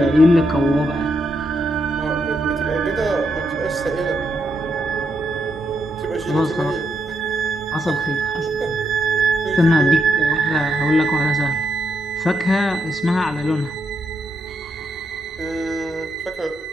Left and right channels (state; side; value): normal; both; correlation 0.80